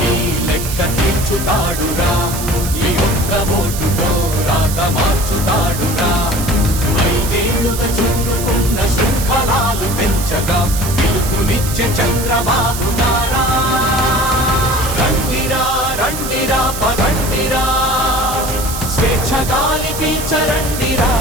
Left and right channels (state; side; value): noise; right; hiss, 7 dB below the sound